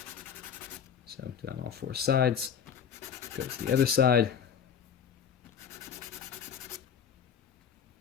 So do that on all four sides. Go to the other side.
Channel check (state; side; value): quieter; right; 7.9 dB